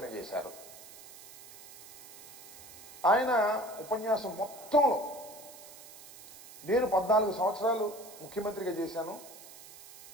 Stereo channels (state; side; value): noise; right; hiss, 17 dB below the sound